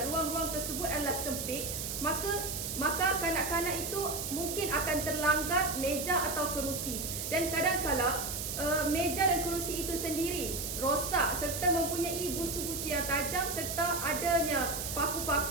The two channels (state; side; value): noise; right; hiss, 4 dB below the sound